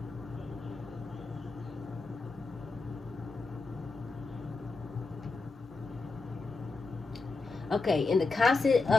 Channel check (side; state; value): right; quieter; 3.8 dB